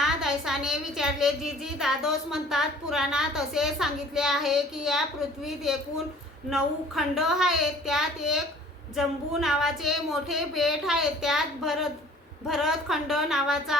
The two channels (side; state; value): both; normal; correlation 0.50